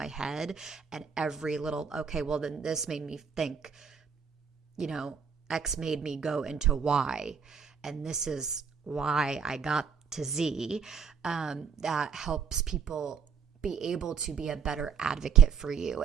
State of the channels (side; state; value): left; quieter; 6.7 dB